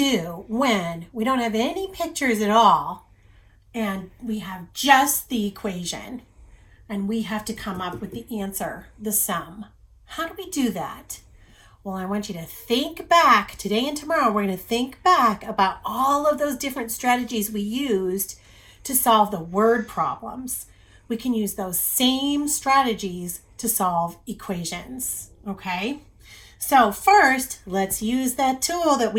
when we don't have any pictures at all and we have just the equation and we have to come up with the answer, the sum. How do we do that? Well, I want you to think back today and tomorrow. We're going to think back about all of those different strategies we used to solve the word problems. We can use those same strategies to solve equations. Okay? So, first, let's use that tool that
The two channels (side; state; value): both; identical; correlation 1.00